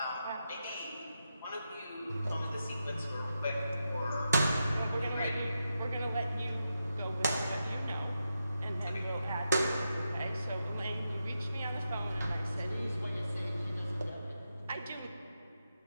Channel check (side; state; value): both; inverted; correlation -0.87